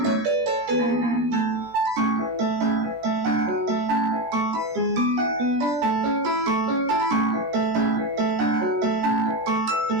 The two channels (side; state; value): left; late; 17 ms